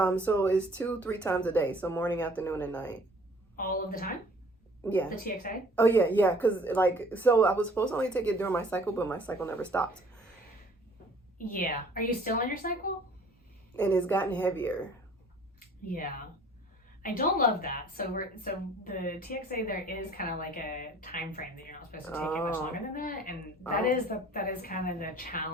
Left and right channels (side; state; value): both; normal; correlation 0.53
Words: So it's 2-3 times a day. So morning, afternoon, and night. All of the time? Yeah. The TXA? Oh yeah. Because so I was supposed to only take it during my cycle, but my cycle never stopped. Yeah. Are you still on your cycle? And it's gotten heavier. Yeah. I don't love that. So the TXA, there is kind of like a time frame that you're not supposed to take it much longer than that, and that is kind of the